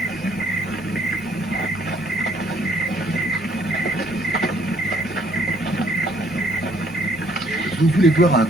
Vous voulez voir un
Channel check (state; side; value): normal; both; correlation 0.63